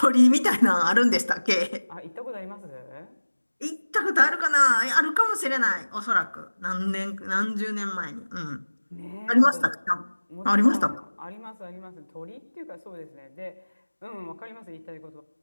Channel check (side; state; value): both; inverted; correlation -1.00